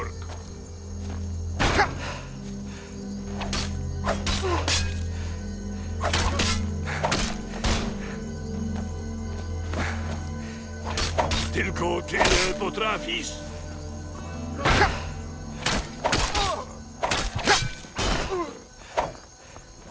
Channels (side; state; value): both; identical; correlation 1.00